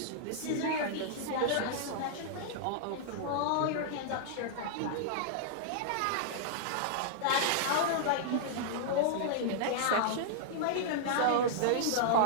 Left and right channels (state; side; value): different; both; correlation -0.01